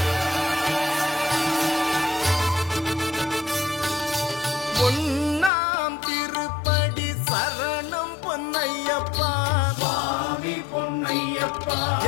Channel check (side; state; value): right; drops out; at 5.5 s